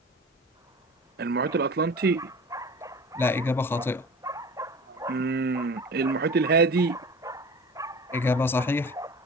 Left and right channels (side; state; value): both; normal; correlation 0.38